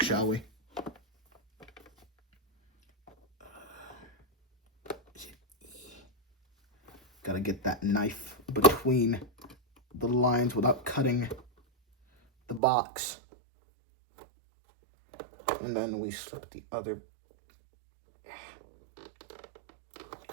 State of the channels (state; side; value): drops out; left; at 12.6 s